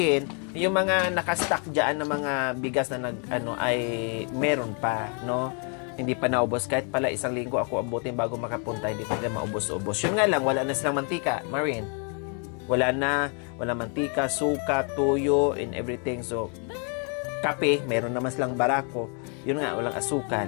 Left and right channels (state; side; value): quieter; right; 39.1 dB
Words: yung mga nakastock diyan na mga bigas na ay meron pa, no? Hindi pa naubos. Kahit pala isang linggo ako abutin bago makapunta, hindi pa nila maubos-ubos. Yun nga lang, wala na silang mantika, Marin. Wala na, wala mantika, suka, tuyo, and everything. So, kape, meron naman silang barako. Yun nga, walang asukal.